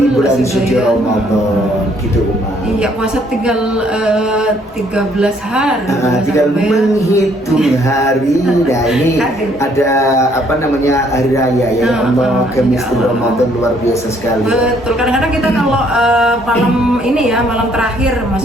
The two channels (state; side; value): normal; both; correlation 0.65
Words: bulan suci Ramadan gitu Uma. Iya, puasa tinggal 13 hari. Tinggal menghitung hari. Nah ini ada apa namanya, hari raya ya Allah, Kemistul Ramadan luar biasa sekali. Betul, kadang-kadang kita kalau malam ini ya, malam terakhir,